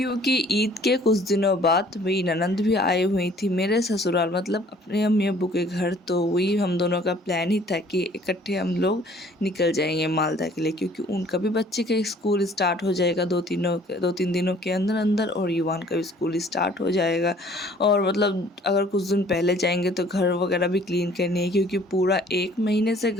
ईद के कुछ दिनों बाद मेरी ननद भी आई हुई थी मेरे ससुराल, मतलब अपने अम्मी अब्बू के घर। तो वही हम दोनों का प्लान ही था कि इकट्ठे हम लोग निकल जाएंगे मालदा के लिए, क्योंकि उनका भी बच्चे का स्कूल स्टार्ट हो जाएगा 2-3 दिनों के अंदर अंदर और युवान का भी स्कूल स्टार्ट हो जाएगा। और मतलब अगर कुछ दिन पहले जाएंगे तो घर वगैरह भी क्लीन करनी है, क्योंकि पूरा 1 महीने से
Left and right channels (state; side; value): normal; both; correlation 0.56